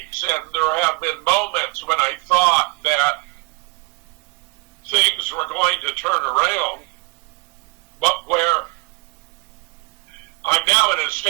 And there have been moments when I thought that things were going to turn around, but where I'm now in a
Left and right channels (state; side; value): quieter; left; 28.9 dB